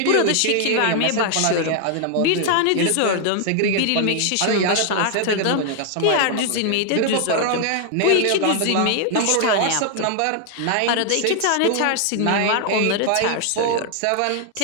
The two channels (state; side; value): different; both; correlation 0.00